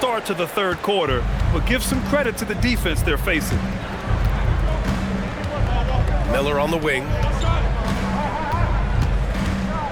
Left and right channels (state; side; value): identical; both; correlation 1.00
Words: to the third quarter, but give some credit to the defense they're facing. Miller on the wing.